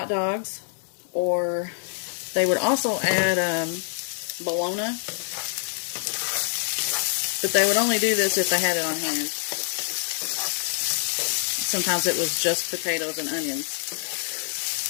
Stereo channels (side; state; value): right; silent; 61 dB below the other